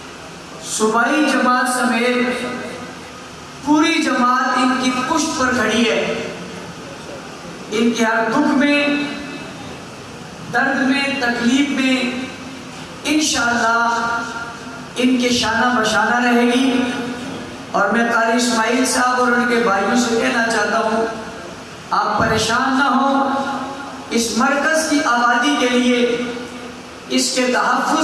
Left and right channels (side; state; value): both; identical; correlation 1.00